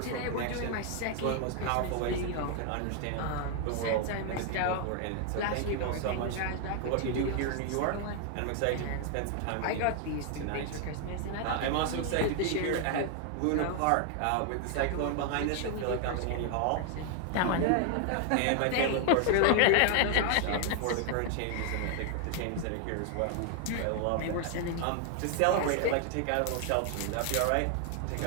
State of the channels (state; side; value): different; both; correlation 0.00